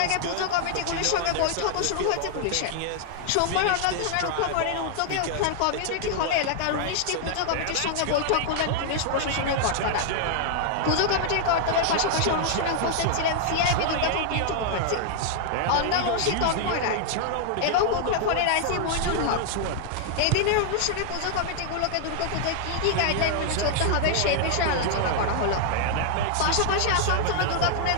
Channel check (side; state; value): both; different; correlation 0.00